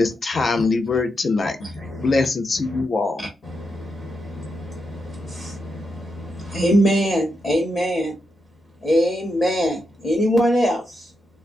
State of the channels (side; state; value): both; normal; correlation 0.84